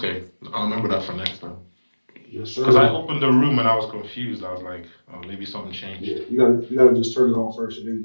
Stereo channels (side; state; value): both; inverted; correlation -1.00